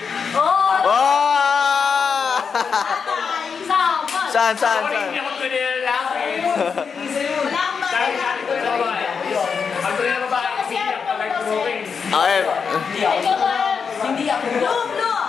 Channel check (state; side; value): quieter; right; 6.0 dB